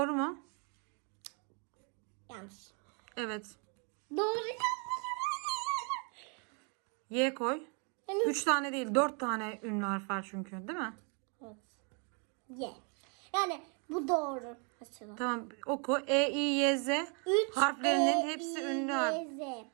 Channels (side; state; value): left; quieter; 37.3 dB